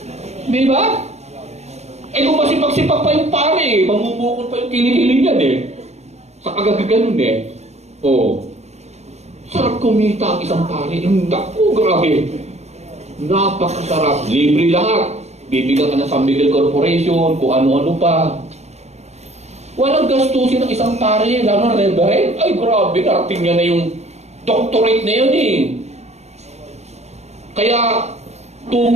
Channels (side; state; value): left; late; 0.32 ms